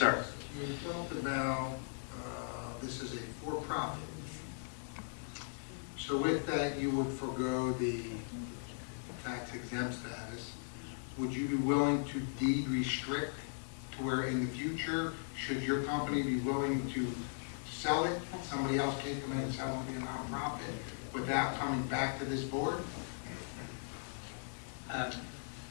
You talked about this is a for-profit. So with that, you would forego the tax exempt status. Would you be willing to deed restrict to where in the future, should your company be willing to sell it, somebody else can come in and sell it and be a nonprofit without coming back to this board?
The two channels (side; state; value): right; silent; digital silence